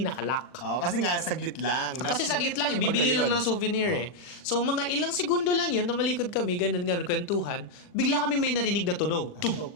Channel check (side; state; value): right; late; 39 ms